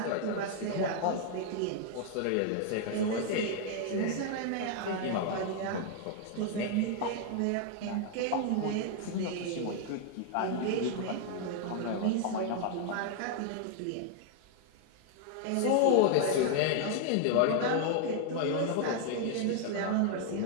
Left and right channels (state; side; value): different; both; correlation 0.00